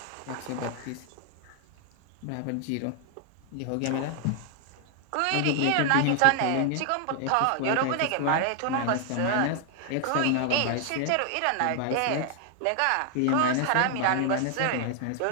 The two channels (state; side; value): different; both; correlation 0.00